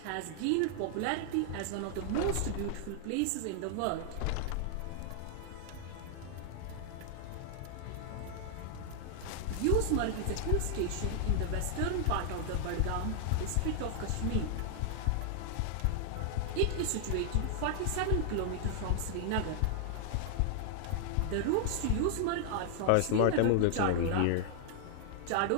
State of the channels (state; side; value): different; both; correlation 0.00